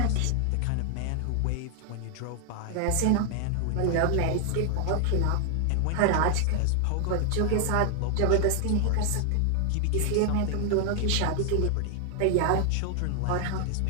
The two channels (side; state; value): both; different; correlation 0.00